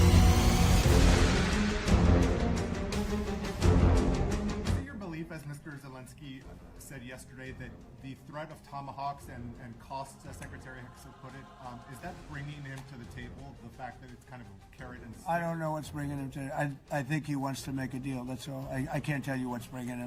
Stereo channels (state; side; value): identical; both; correlation 1.00